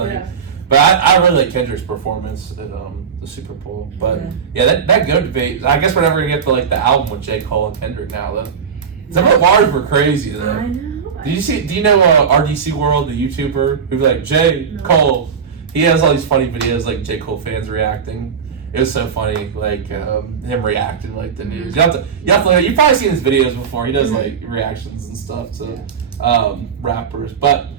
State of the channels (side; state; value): left; quieter; 6.7 dB